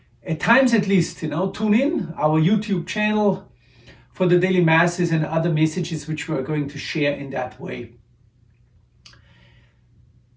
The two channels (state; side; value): identical; both; correlation 1.00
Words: at times at least, tune in our YouTube channel for the daily Masses and other messages which we are going to share in that way.